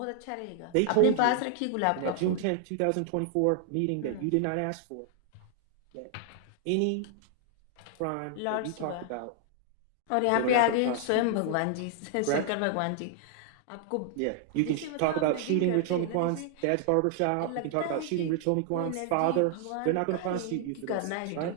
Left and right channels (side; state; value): both; different; correlation 0.00